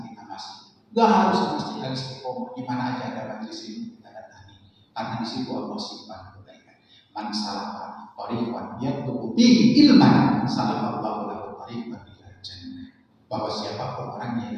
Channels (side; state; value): both; identical; correlation 1.00